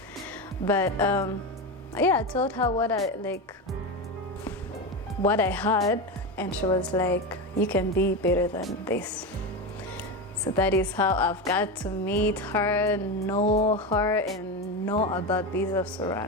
But yeah, I told her what I had, and she was like, you can be better than this. So that is how I've got to meet her, know her, and know about Bizeps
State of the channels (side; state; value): both; normal; correlation 0.18